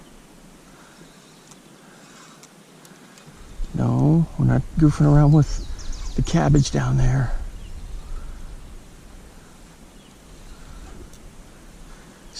No, we're not goofing around with the cabbage down there.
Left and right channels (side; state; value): both; identical; correlation 1.00